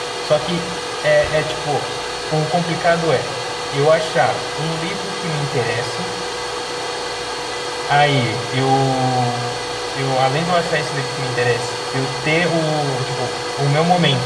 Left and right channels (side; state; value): both; identical; correlation 1.00